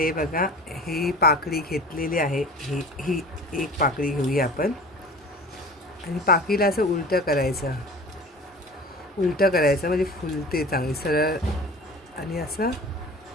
बघा ही पाकळी घेतलेली आहे. ही एक पाकळी घेऊया आपण आणि पाकळीला असं उलटं करायचं. उलटं करायचं म्हणजे फुलते चांगली सरळ. आणि असं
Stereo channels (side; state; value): both; normal; correlation 0.40